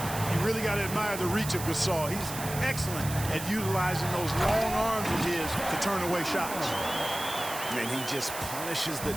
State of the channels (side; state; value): right; noise; hiss, 8 dB below the sound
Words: You really got to admire the reach of Gasol. He's excellent at utilizing those long arms of his to turn away shots. And he just punishes the